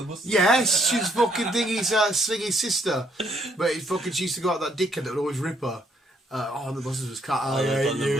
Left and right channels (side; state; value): both; normal; correlation 0.69